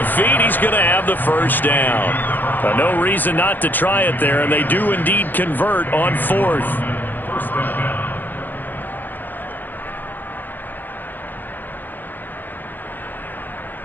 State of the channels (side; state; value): right; late; 0.087 ms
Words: feet. He's going to have the first down. No reason not to try it there, and they do indeed convert on 4th.